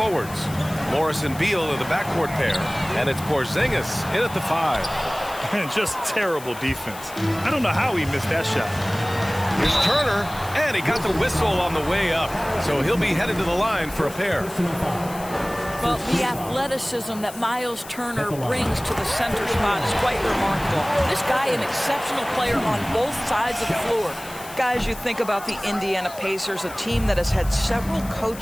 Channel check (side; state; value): left; noise; hiss, 16 dB below the sound